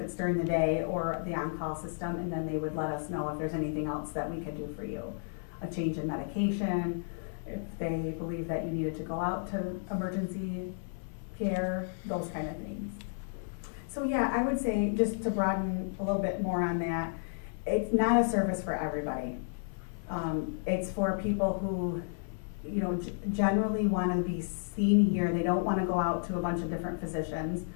it's during the day or the on-call system, and then they would let us know if there's anything else that we could do for you. A change in medication, if they believe that you needed to go out to emergency care, those kind of things. So yeah, I would say, just to broaden a little bit more on that, it's not a service for everybody. It's for people who, you know, generally want to be seen here. They don't want to go out to a bunch of different physicians.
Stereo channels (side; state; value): right; silent; 56 dB below the other